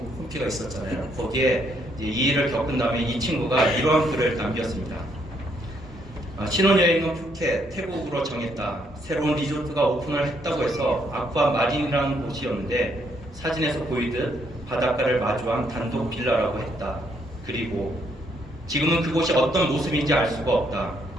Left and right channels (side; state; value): both; normal; correlation 0.72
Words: 있었잖아요. 거기에 이 일을 겪은 다음에 이 친구가 이러한 글을 남겼습니다. 신혼여행은 푸켓, 태국으로 정했다. 새로운 리조트가 오픈을 했다고 해서 아쿠아 마린이라는 곳이었는데 사진에서 보이듯 바닷가를 마주한 단독 빌라라고 했다. 그리고 지금은 그곳이 어떤 모습인지 알 수가 없다.